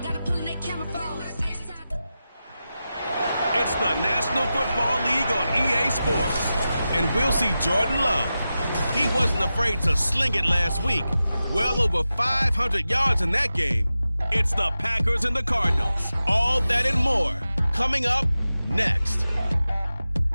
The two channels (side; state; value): both; inverted; correlation -0.93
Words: Gotta pull in that camera phone. It's the National Football League on EA Sports. And we'll see Jordan Love. He wasn't afraid to sling it last week. Well over 500 yards in that game. It's the Packers and the Cardinals. All that and more coming up next.